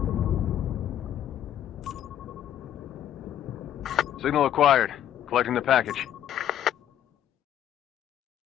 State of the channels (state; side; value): quieter; right; 10.9 dB